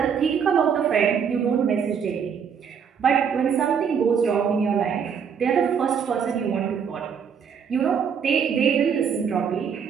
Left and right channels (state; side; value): quieter; left; 7.1 dB